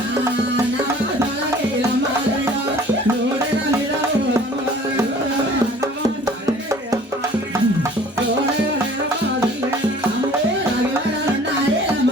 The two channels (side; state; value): both; normal; correlation 0.50